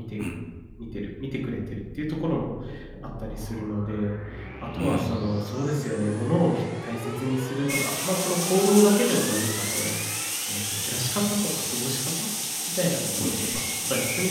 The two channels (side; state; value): both; identical; correlation 1.00